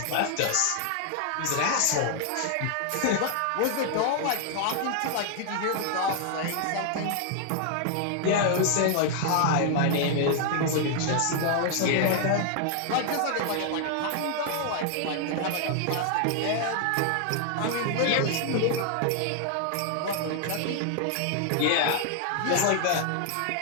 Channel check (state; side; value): different; both; correlation 0.00